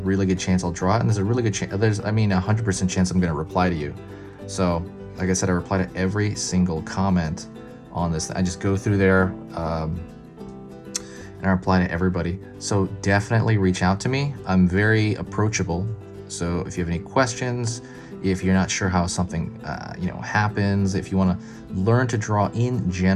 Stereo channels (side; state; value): both; identical; correlation 1.00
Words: good chance I'll draw it, and there's a really good chance, I mean 100% chance I'm going to reply to you. So like I said, I reply to every single comment on this. I just go through there and I reply to everybody. So definitely reach out to me. I'm very approachable. So if you have any questions, if you're not sure how something happens, if you want to learn to draw in